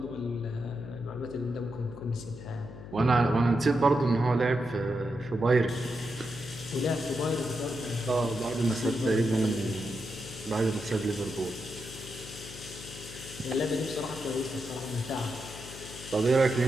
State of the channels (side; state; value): left; noise; hum, 13 dB below the sound